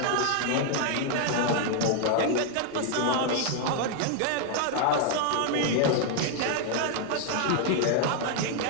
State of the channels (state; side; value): different; both; correlation 0.00